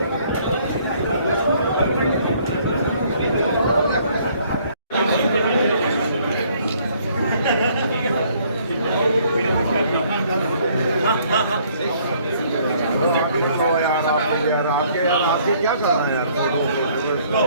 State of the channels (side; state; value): both; inverted; correlation -0.62